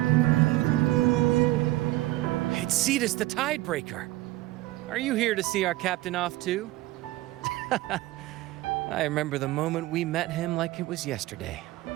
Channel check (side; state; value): left; quieter; 17.9 dB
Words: It's Cetus the Tidebreaker. Are you here to see our captain off too? I remember the moment we met him like it was yesterday.